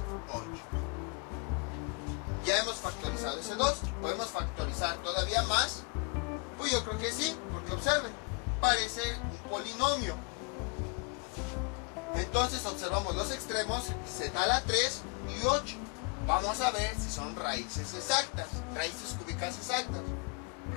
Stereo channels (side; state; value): right; quieter; 32.9 dB